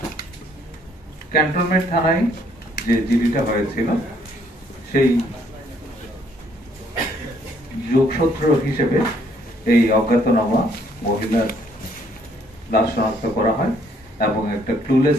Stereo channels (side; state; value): both; normal; correlation 0.66